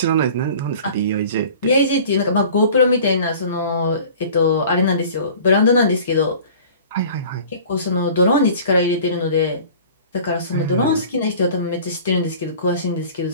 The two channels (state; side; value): inverted; both; correlation -0.44